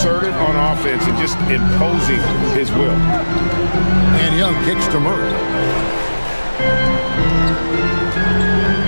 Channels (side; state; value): both; inverted; correlation -1.00